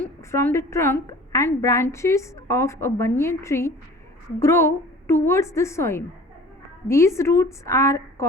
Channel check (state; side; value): normal; both; correlation 0.45